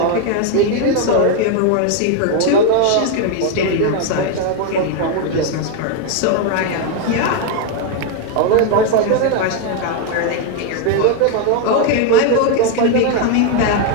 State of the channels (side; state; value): both; different; correlation 0.01